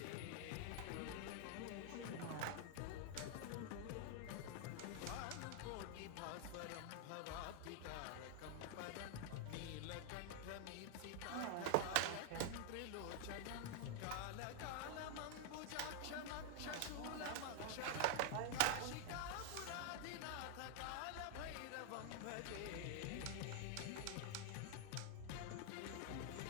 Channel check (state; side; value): different; both; correlation 0.00